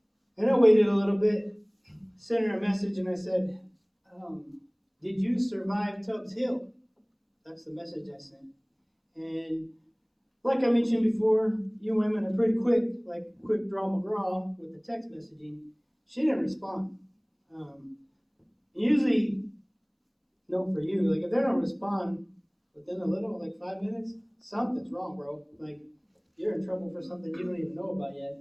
and I waited a little bit, sent her a message, and I said, did you survive Tubbs Hill? That's the message I sent. And like I mentioned before, you women are pretty quick, like quick draw McGraw with the text messaging. She didn't respond. Usually, no for you, like if they don't respond within a little, like 5 minutes, something's wrong, bro. Like, you're in trouble for something you don't even know about yet.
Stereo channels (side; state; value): both; identical; correlation 1.00